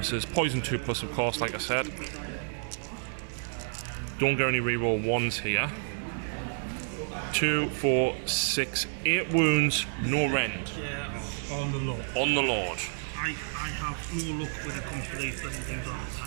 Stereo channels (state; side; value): silent; left; digital silence